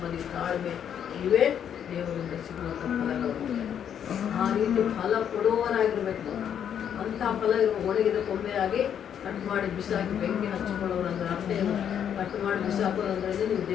ತಾಳ್ಮೆ ಇವೇ ದೇವರಿಂದ ಸಿಗುವಂಥ ಫಲಗಳು. ಆ ರೀತಿ ಫಲ ಕೊಡುವವರಾಗಿರ್ಬೇಕು ನಾವು. ಅಂಥ ಫಲ ಇರುವ ಒಣಗಿದ ಕೊಂಬೆಯಾಗಿ ಕಟ್ ಮಾಡಿ ಬಿಸಾಕಿ ಬೆಂಕಿ ಹಚ್ಚಿಕೊಳ್ಳೋರು ಅಂದರೆ ಅರ್ಥ ಏನು? ಕಟ್ ಮಾಡಿ ಬಿಸಾಕೋದಂದ್ರೆ ನೀವು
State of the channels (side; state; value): right; quieter; 8.9 dB